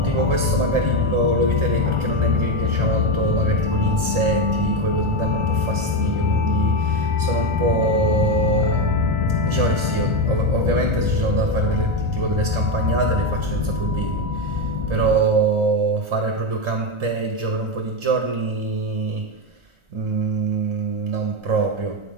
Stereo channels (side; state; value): left; late; 1.4 ms